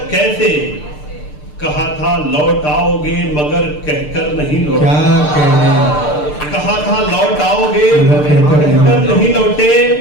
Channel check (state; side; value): late; right; 6.7 ms